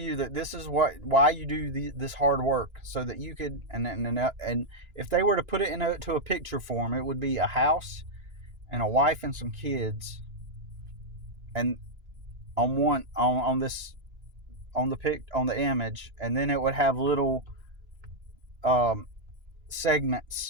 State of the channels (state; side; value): late; left; 2.9 ms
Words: that this is why you do this hard work, so that you could, and if they were to put it into a picture form, it would be a house and a wife and some kids, and on the image, and then it would have little